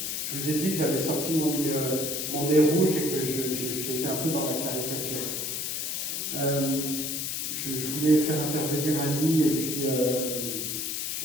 je vous ai dit que j'avais sorti mon nez rouge et que j'étais un peu dans la caricature. Je voulais faire intervenir Annie et puis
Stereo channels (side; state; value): left; noise; hiss, 2 dB below the sound